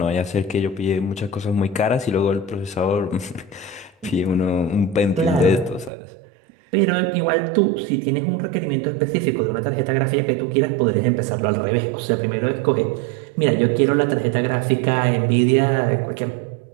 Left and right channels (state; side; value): drops out; left; at 5.9 s